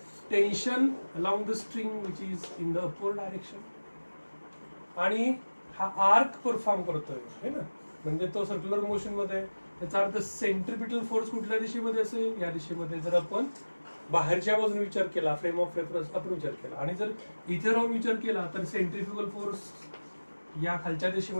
tension along the string which is in the upward direction, आणि हा arc perform करतोय है ना, म्हणजे तो सर्क्युलर मोशन मध्ये आहे. त्याचा अर्थ सेंट्रिपिटल फोर्स कुठल्या दिशेमध्ये असेल, या दिशेमध्ये. जर आपण बाहेरच्या बाजूने विचार केला, फ्रेम ऑफ रेफरन्स आपण विचार केला, आणि जर इथे राहून विचार केला तर सेंट्रिफ्युगल फोर्स या खालच्या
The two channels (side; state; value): both; inverted; correlation -1.00